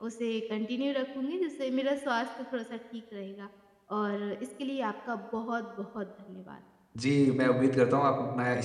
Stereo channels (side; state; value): both; identical; correlation 1.00